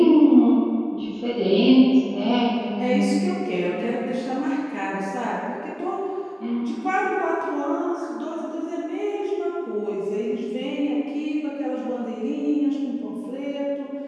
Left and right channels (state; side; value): identical; both; correlation 1.00